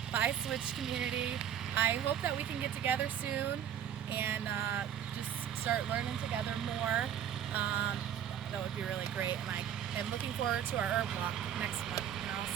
Bye, Switch community. I hope that we can get together soon and just start learning together more. That would be really great, and I am looking forward to our herb walk next month, and I'll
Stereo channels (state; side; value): quieter; left; 9.5 dB